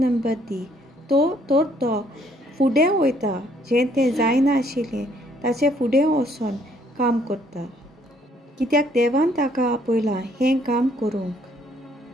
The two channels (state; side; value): normal; both; correlation 0.65